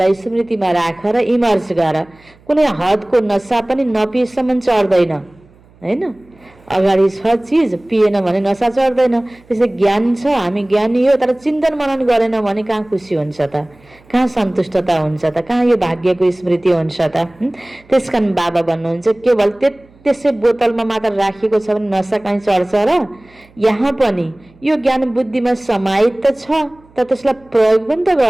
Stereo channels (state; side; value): noise; right; hum, 29 dB below the sound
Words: स्मृतिमा राख र इमर्स गर। कुनै हदको नसा पनि नपिएसम्म चढ्दैन होइन। अगाडि छ चिज, पिएन भने नसा चढ्दैन। त्यसै ज्ञान छ, हामी ज्ञानी हो, तर चिन्तन मनन गरेन भने कहाँ खुसी हुन्छ त, कहाँ सन्तुष्टता हुन्छ त, कहाँ यो भाग्यको स्मृति हुन्छ त। त्यस कारण बाबा भन्नुहुन्छ केवल त्यसै बोतलमा मात्र राखिएको छ भने नसा कहीँ चढ्छ र? यहाँ पनि यो ज्ञान बुद्धिमा समाहित त छ, तर त्यसलाई प्रयोग पनि त